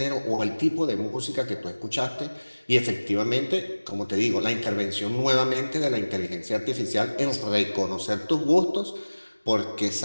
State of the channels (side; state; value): both; inverted; correlation -1.00